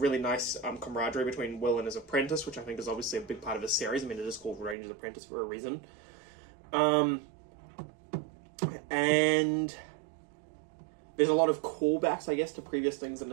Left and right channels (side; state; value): left; drops out; at 4.8 s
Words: nice camaraderie between Will and his apprentice, which I think is obviously a big part of his series. I mean, it is called Ranger's Apprentice for a reason. And there's a lot of callbacks, I guess, to previous things in